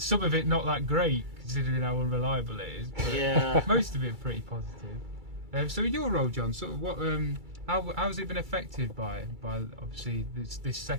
of it not that great, considering how unreliable it is. But Yeah. most of it pretty positive. So in your role, John, sort of what, how has it been affected by obviously this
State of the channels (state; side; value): late; left; 2.3 ms